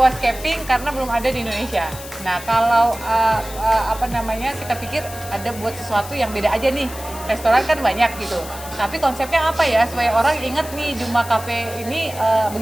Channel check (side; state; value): left; noise; hiss, 14 dB below the sound